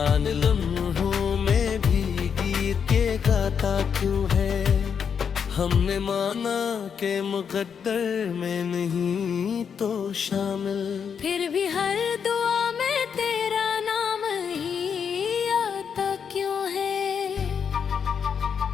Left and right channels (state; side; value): quieter; right; 7.0 dB